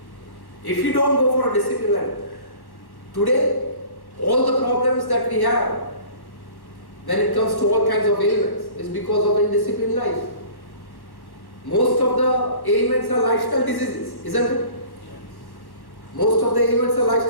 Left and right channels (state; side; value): late; right; 1.1 ms